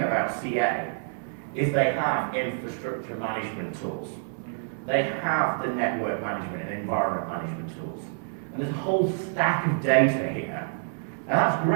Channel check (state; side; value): silent; left; 60 dB below the other